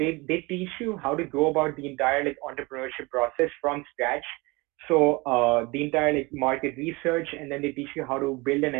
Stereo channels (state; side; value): quieter; left; 24.8 dB